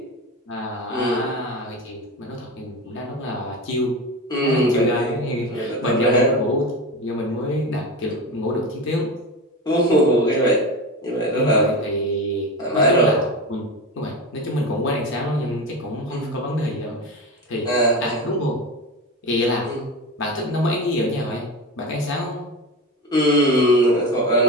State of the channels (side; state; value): both; normal; correlation 0.24